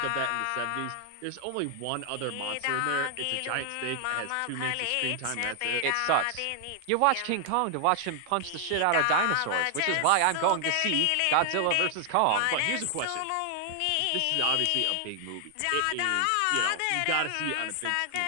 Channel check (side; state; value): both; different; correlation 0.00